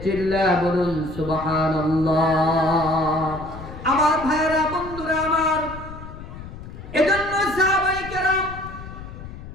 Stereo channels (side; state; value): left; noise; rumble, 12 dB below the sound